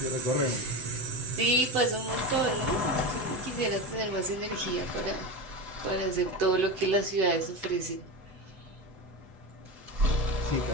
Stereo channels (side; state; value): left; late; 7.9 ms